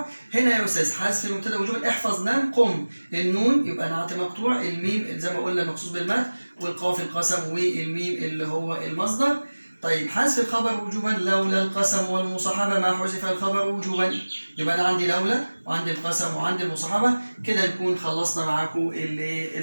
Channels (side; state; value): both; inverted; correlation -1.00